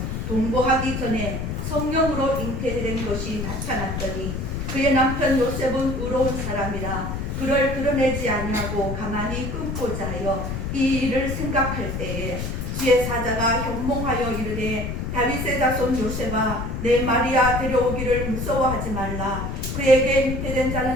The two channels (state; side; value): noise; left; rumble, 4 dB below the sound